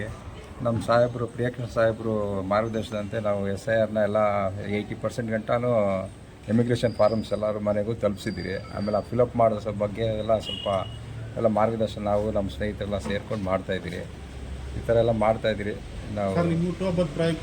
ನಮ್ಮ ಸಾಹೇಬರು ಪ್ರಿಯಕೃಷ್ಣ ಸಾಹೇಬರು ಮಾರ್ಗದರ್ಶನದಂತೆ ನಾವು SIRನ ಎಲ್ಲ 80% ಗಂಟನೂ ಇಮಿಗ್ರೇಷನ್ ಫಾರ್ಮ್ಸ್ ಎಲ್ಲರ ಮನೆಗೂ ತಲುಪಿಸಿದ್ದೀರಿ. ಆಮೇಲೆ ಆ ಫಿಲಪ್ ಮಾಡೋ ಬಗ್ಗೆ ಎಲ್ಲ ಸ್ವಲ್ಪ ಎಲ್ಲ ಮಾರ್ಗದರ್ಶನ ನಾವು ನಮ್ಮ ಸ್ನೇಹಿತರೆಲ್ಲ ಸೇರ್ಕೊಂಡು ಮಾಡ್ತಾಯಿದ್ದೀರಿ. ಈ ಥರ ಎಲ್ಲ ಮಾಡ್ತಾಯಿದ್ದೀರಿ. ನಾವು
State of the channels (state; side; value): identical; both; correlation 1.00